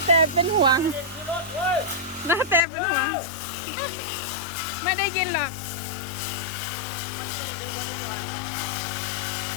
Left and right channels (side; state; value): right; drops out; at 2.7 s